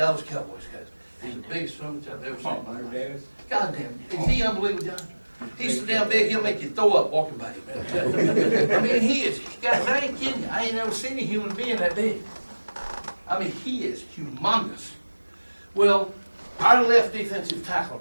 Cowboys, guys, he's the biggest son I've ever seen. God damn, is he unbelievable, John? He's so damn big, he'll make you throw up walking by him. I mean, he is, guys, I ain't kidding you. I ain't never seen a human being that big. I mean, he is humongous. Well, our left defensive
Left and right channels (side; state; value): both; inverted; correlation -1.00